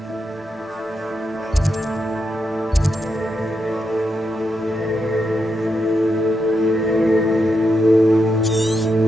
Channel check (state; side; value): normal; both; correlation 0.84